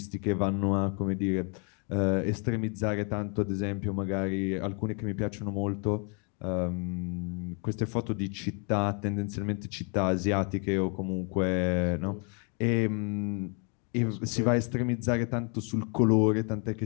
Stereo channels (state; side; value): quieter; right; 37.0 dB